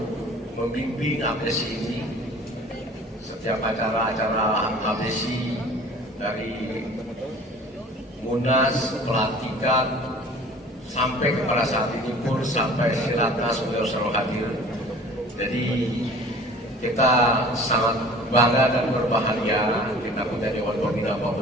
membimbing APSI ini. Setiap acara-acara APSI dari Munas, pelantikan, sampai kepada saat ini pun sampai Silatnas beliau selalu hadir. Jadi kita sangat bangga dan berbahagia kita punya Dewan Pembina Pak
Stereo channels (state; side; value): normal; both; correlation 0.46